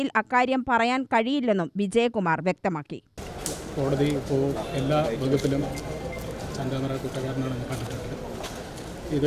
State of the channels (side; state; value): both; identical; correlation 1.00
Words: അക്കാര്യം പറയാൻ കഴിയില്ലെന്നും വിജയകുമാർ വ്യക്തമാക്കി. കോടതി ഇപ്പോൾ എല്ലാ വകുപ്പിലും ചെന്താമര കുറ്റക്കാരനാണെന്ന് കണ്ടിട്ടുണ്ട്.